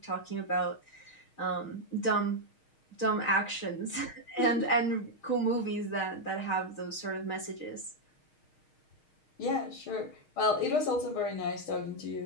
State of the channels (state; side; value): late; right; 6.4 ms